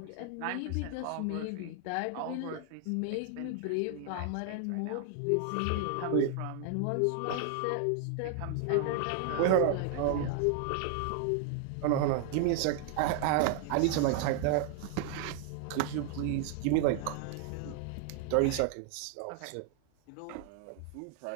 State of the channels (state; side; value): different; both; correlation 0.00